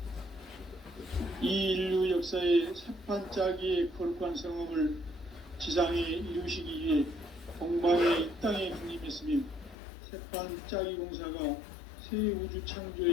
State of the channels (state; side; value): drops out; right; at 9.8 s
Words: 이 인류 역사의 새판 짜기의 거룩한 성험을 지상에 이루시기 위해 동방의 이 땅에 강림했으며 새판 짜기 공사가 새 우주